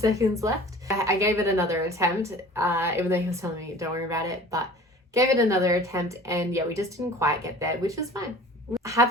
left. I gave it another attempt, even though he was telling me, don't worry about it. But gave it another attempt. And yeah, we just didn't quite get there, which was fine.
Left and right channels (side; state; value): both; normal; correlation 0.44